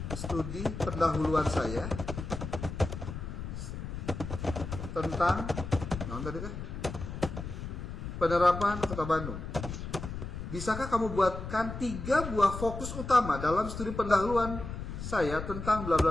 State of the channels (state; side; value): noise; left; rumble, 7 dB below the sound